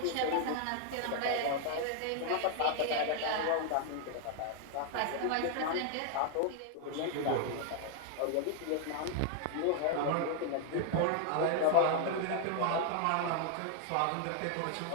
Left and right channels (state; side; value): different; both; correlation 0.00